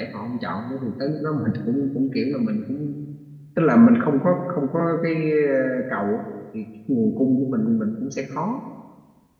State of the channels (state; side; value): identical; both; correlation 1.00